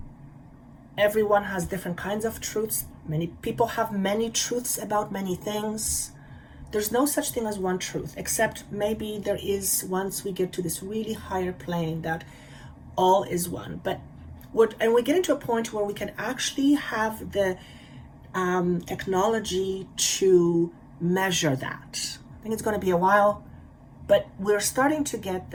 Everyone has different kinds of truths. Many people have many truths about many things. There's no such thing as one truth, except maybe there is once we get to this really higher plane that all is one. But we get into a point where we can actually have the technology to measure that. I think it's going to be a while, but we're starting to get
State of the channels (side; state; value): both; identical; correlation 1.00